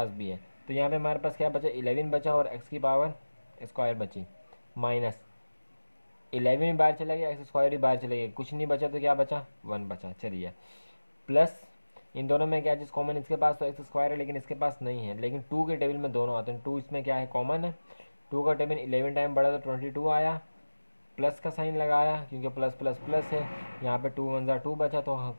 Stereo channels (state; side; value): inverted; both; correlation -1.00